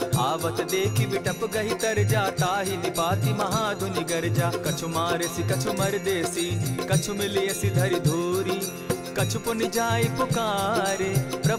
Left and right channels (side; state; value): both; identical; correlation 1.00